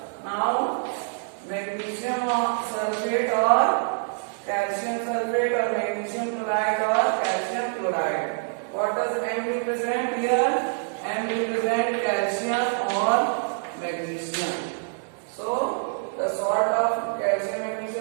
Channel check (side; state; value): left; silent; digital silence